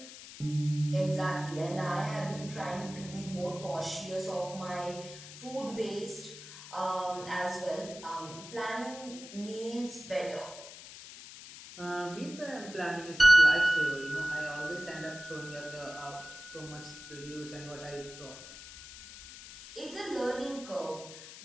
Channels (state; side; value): noise; left; hiss, 14 dB below the sound